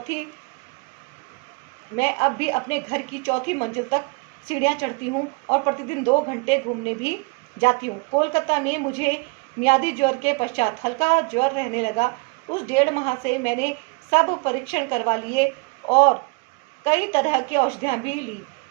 की चौथी मंजिल तक सीढ़ियाँ चढ़ती हूँ और प्रतिदिन 2 घंटे घूमने भी जाती हूँ। कोलकाता में मुझे मियादी ज्वर के पश्चात हल्का ज्वर रहने लगा। उस 1.5 माह से मैंने सब परीक्षण करवा लिए और कई तरह की औषधियाँ भी ली,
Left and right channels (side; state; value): left; quieter; 29.8 dB